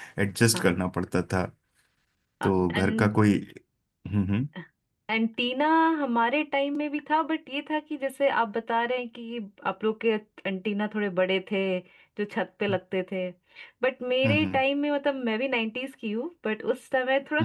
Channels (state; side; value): identical; both; correlation 1.00